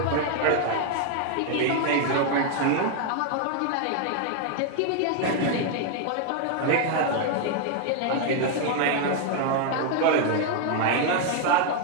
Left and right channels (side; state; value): both; different; correlation 0.00